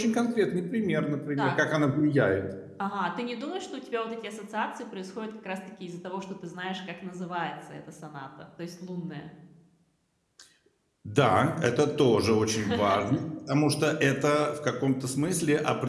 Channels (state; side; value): identical; both; correlation 1.00